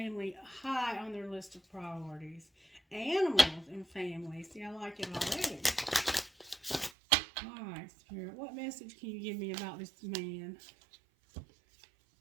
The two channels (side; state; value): left; drops out; at 7.0 s